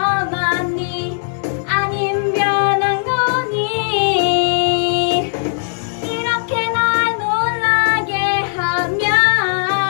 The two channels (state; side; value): silent; right; 63 dB below the other